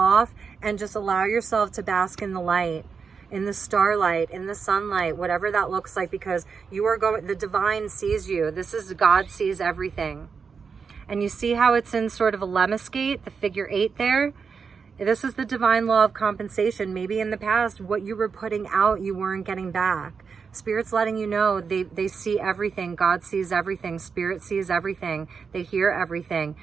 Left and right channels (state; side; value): quieter; left; 5.7 dB